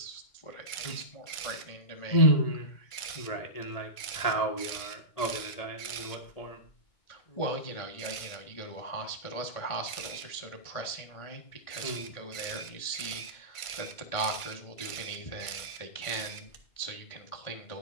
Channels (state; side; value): late; right; 2.2 ms